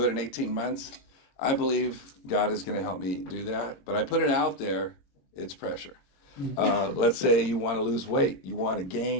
it in 18 months. I believe God is going to help me do that. But I put it out there, it's pressure. Let's say you want to lose weight. You want to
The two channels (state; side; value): late; right; 22 ms